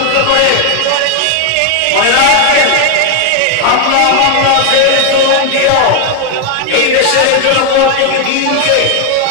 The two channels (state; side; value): different; both; correlation 0.01